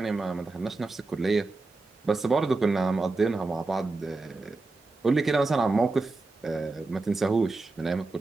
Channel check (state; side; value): quieter; left; 3.4 dB